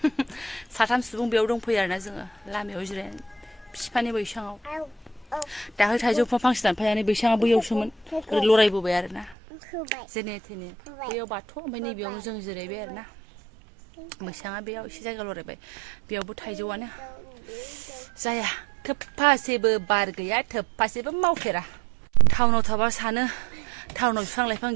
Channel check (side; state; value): left; drops out; at 9.3 s